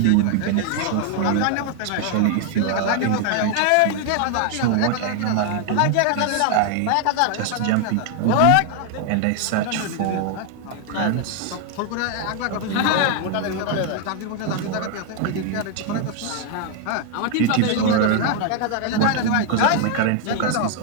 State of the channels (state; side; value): different; both; correlation 0.00